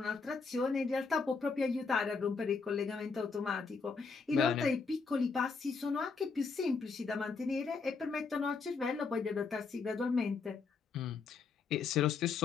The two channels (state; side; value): quieter; right; 4.8 dB